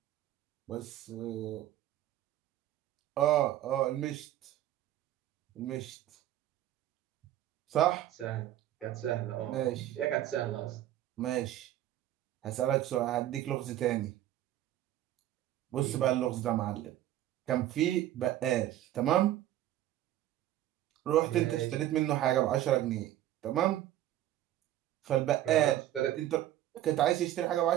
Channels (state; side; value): quieter; left; 13.2 dB